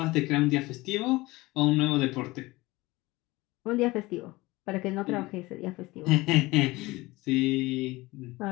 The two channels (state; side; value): quieter; right; 20.7 dB